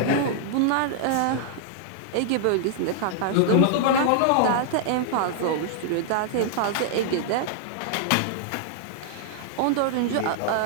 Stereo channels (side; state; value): both; different; correlation -0.01